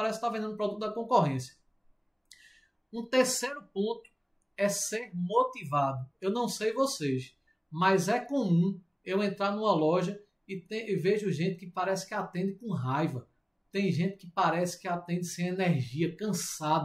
estar vendendo o produto da concorrência. Um terceiro ponto é ser motivado. Eu não sei vocês, mas é comum eu entrar numa loja e vejo gente que parece que atende com raiva. Tem gente que parece que atende sem energia,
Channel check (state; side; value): identical; both; correlation 1.00